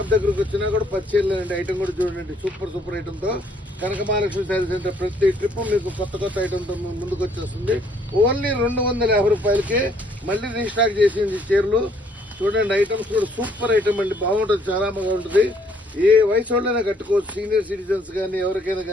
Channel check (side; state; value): both; normal; correlation 0.65